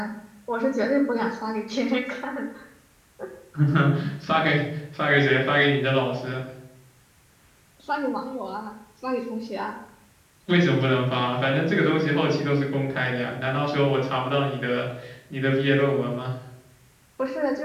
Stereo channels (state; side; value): identical; both; correlation 1.00